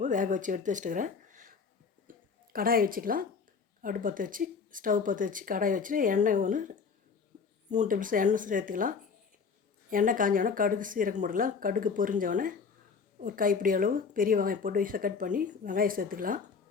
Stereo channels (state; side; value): quieter; right; 5.5 dB